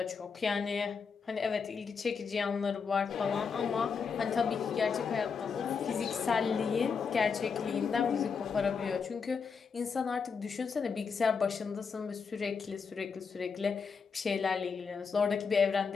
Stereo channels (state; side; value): quieter; right; 5.7 dB